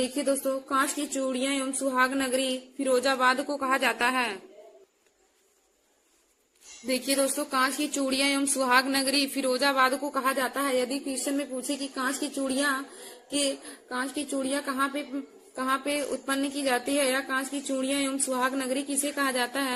दोस्तों, कांच की चूड़ियां एवं सुहाग नगरी फिरोजाबाद को कहा जाता है। देखिए दोस्तों, कांच की चूड़ियां एवं सुहाग नगरी फिरोजाबाद को कहा जाता है। यदि क्वेश्चन में पूछे कि कांच की चूड़ियां कहाँ पे उत्पन्न की जाती है, या कांच की चूड़ियां एवं सुहाग नगरी किसे कहा जाता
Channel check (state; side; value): identical; both; correlation 1.00